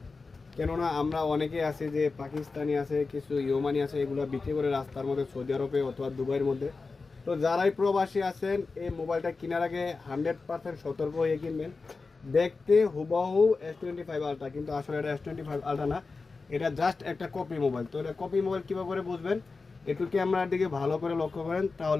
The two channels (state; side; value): quieter; right; 4.1 dB